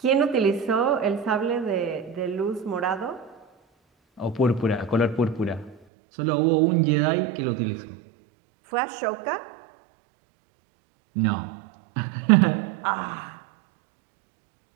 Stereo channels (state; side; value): drops out; left; at 5.8 s